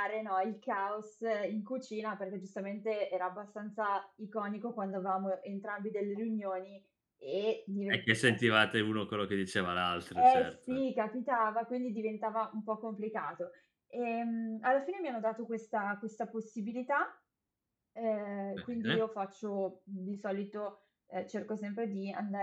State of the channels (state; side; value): identical; both; correlation 1.00